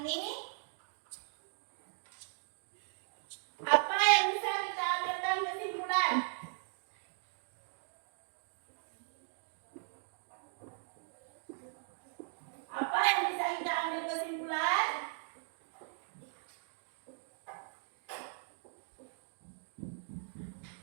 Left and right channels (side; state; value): left; silent; digital silence